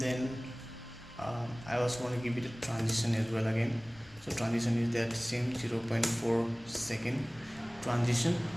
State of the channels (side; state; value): left; noise; rumble, 24 dB below the sound